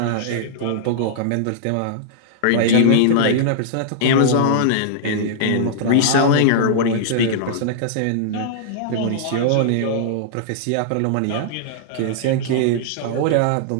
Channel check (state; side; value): different; both; correlation -0.01